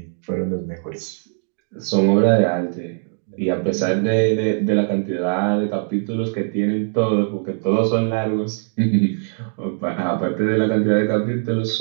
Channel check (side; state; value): left; silent; digital silence